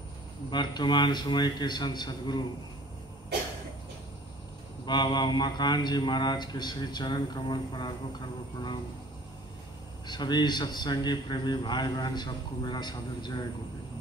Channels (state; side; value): normal; both; correlation 0.50